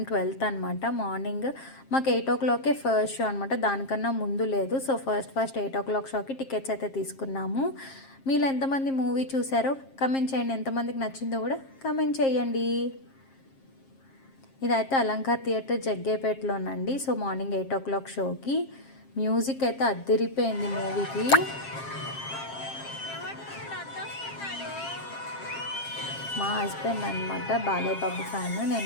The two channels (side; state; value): right; late; 7.5 ms